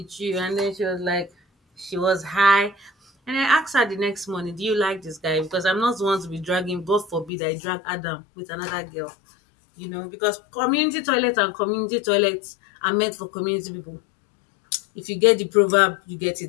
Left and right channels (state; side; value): drops out; right; at 7.3 s